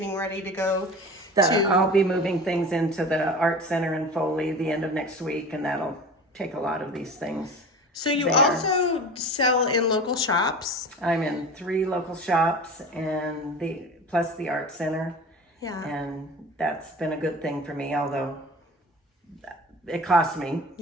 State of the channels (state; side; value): normal; both; correlation 0.36